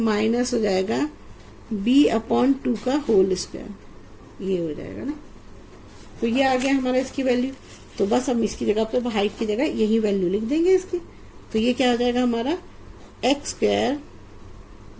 हो जाएगा b/2 का होल स्क्वायर, ये हो जाएगा ना। तो ये आ गया हमारा इसकी वैल्यू। तो बस हम इसकी जगह पे हाइट की जगह यही वैल्यू लिख देंगे इसकी। तो ये क्या हो जाएगा हमारा x²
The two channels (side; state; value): both; identical; correlation 1.00